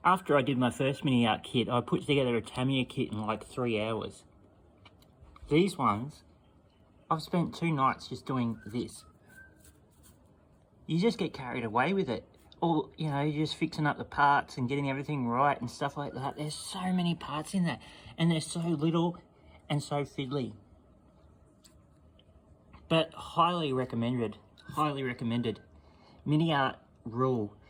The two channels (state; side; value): identical; both; correlation 1.00